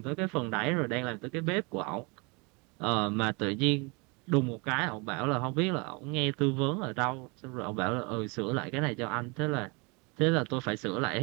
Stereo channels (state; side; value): quieter; left; 29.9 dB